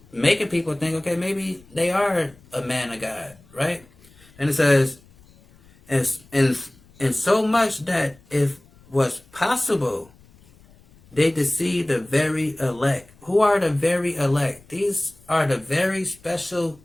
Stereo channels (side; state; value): left; noise; rumble, 27 dB below the sound